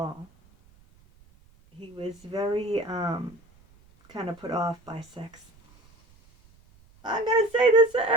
He was very kind of put off by sex. I'm going to say this to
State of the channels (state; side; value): noise; right; rumble, 29 dB below the sound